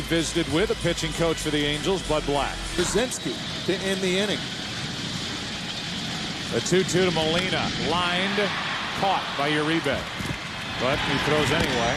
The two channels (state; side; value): identical; both; correlation 1.00